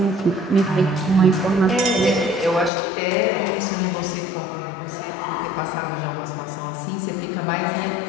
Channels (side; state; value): right; drops out; at 2.7 s